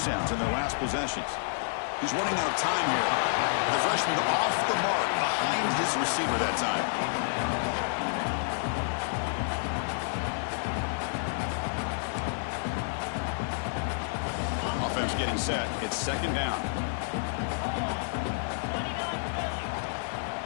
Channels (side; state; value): right; silent; 58 dB below the other